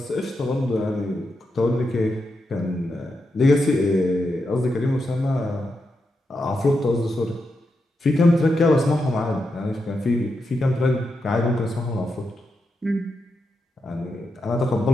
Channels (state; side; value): normal; both; correlation 0.86